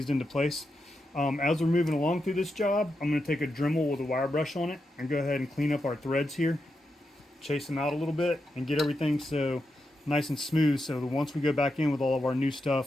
into place. As we're moving along through this job, I'm going to take a Dremel with a wire brush on it and go ahead and clean up our threads here. Chase them out a little bit and get everything so nice and smooth, so that once we go back in with all of our new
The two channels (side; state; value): both; normal; correlation 0.86